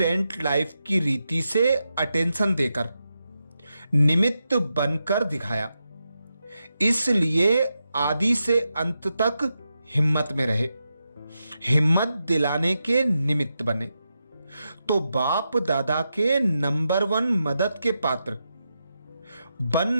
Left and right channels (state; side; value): inverted; both; correlation -0.87